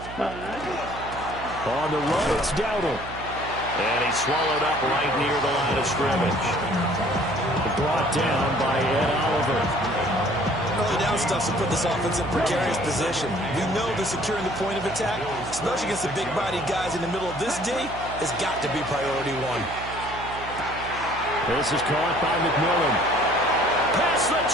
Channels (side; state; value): right; noise; hum, 12 dB below the sound